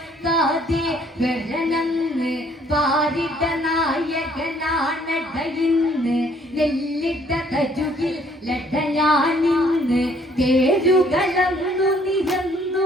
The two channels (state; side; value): normal; both; correlation 0.62